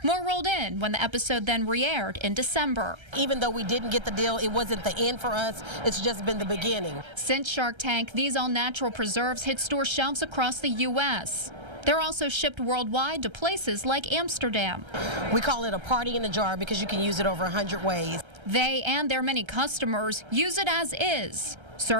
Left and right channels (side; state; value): left; late; 1.3 ms